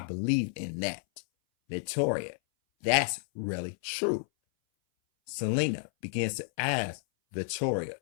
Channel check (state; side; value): silent; right; 57 dB below the other